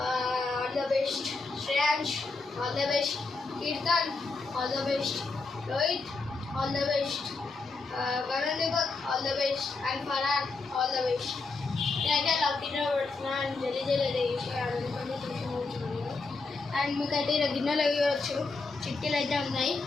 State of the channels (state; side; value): quieter; right; 3.9 dB